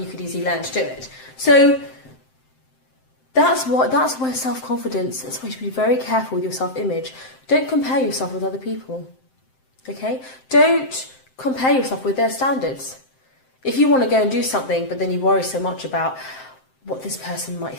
could easily learn to do it. So that's where self-confidence, that's why you should be very careful with your self-image. Don't compare yourself with other people, okay? Don't compare yourself with their standards. If you want to go and do something, but then you worry so much about what this person might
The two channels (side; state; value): right; late; 7.7 ms